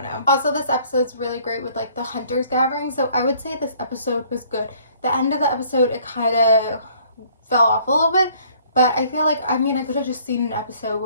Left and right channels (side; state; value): both; inverted; correlation -0.59